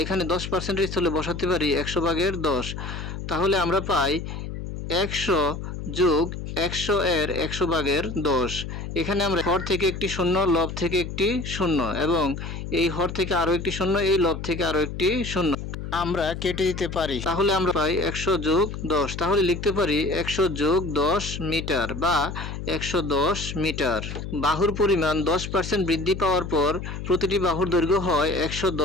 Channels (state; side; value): noise; left; hum, 7 dB below the sound